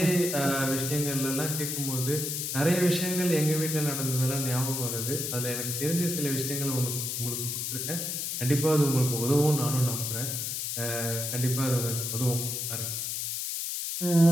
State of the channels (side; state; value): left; noise; hiss, 2 dB below the sound